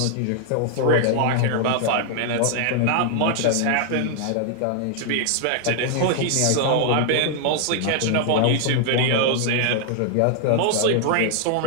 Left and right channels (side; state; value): both; different; correlation 0.00